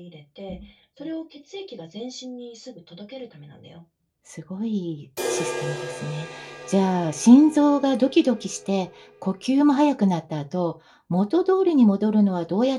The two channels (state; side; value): identical; both; correlation 1.00